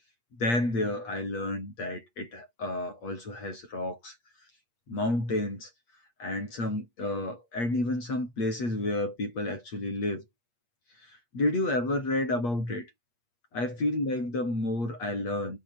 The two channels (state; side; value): late; right; 8.5 ms